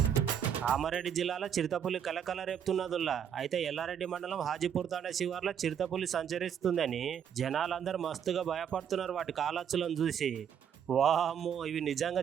కామారెడ్డి జిల్లాలో చిరుతపులి కలకల రేపుతున్నదుల్లా. అయితే ఎల్లారెడ్డి మండలం హాజీపూర్ తాండా శివార్లో చిరుతపులి సంచరిస్తుందని జనాలందరూ మస్తుగా భయపడుతున్నారు వాటి కాలచ్చులను చూసి. వామ్మో ఇవి నిజంగా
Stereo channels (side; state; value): left; quieter; 8.4 dB